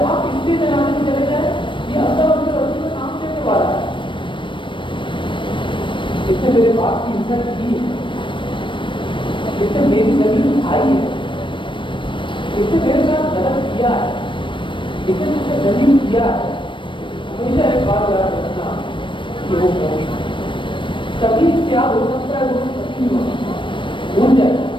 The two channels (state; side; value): late; right; 0.24 ms